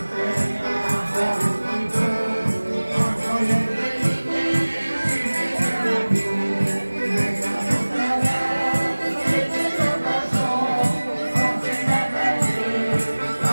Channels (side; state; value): both; inverted; correlation -1.00